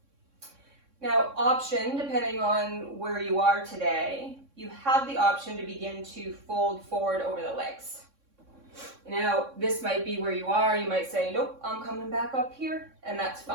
Now, option, depending on where you are today, you have the option to begin to fold forward over the legs. Now, this might be where you are. You might say, nope, I'm coming back up here, and that's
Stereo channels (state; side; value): late; left; 3.6 ms